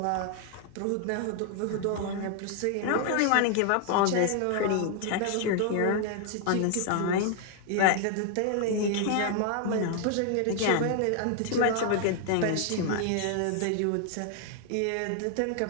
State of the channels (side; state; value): both; different; correlation 0.00